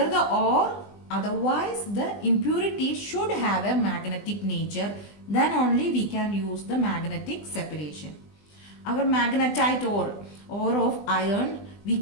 the ore, otherwise the impurity should have a magnetic nature, then only we can use the magnetic separation. Our magnetite ore of iron, we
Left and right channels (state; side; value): late; right; 20 ms